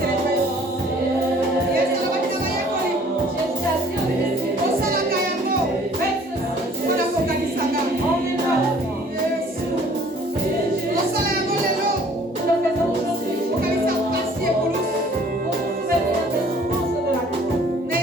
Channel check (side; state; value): both; normal; correlation 0.55